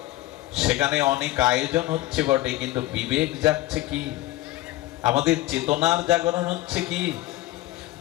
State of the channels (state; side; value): quieter; right; 16.8 dB